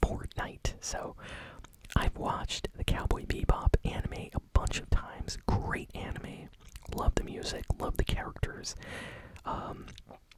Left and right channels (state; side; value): identical; both; correlation 1.00